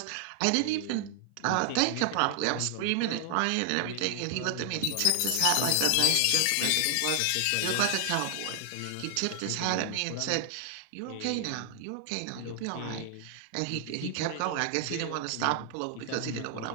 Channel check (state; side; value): different; both; correlation 0.00